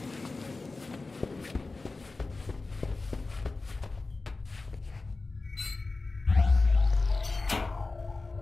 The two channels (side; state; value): right; quieter; 3.6 dB